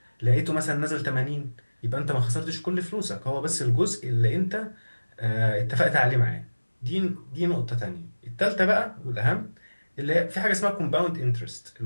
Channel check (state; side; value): inverted; both; correlation -1.00